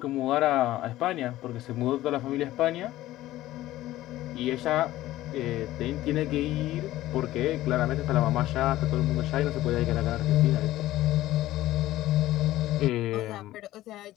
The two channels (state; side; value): quieter; right; 15.4 dB